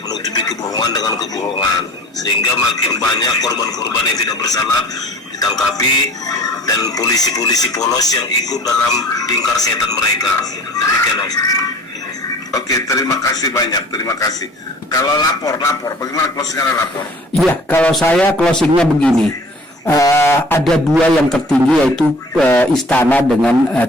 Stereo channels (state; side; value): normal; both; correlation 0.48